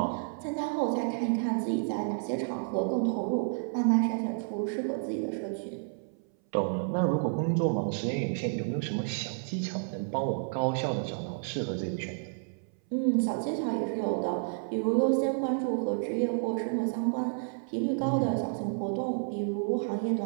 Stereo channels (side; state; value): left; silent; 57 dB below the other